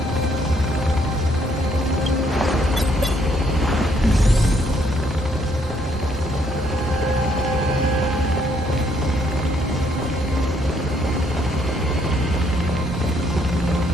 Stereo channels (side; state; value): both; normal; correlation 0.69